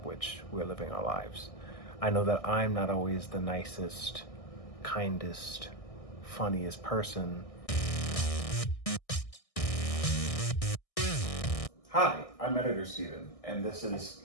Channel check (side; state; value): right; late; 1.6 ms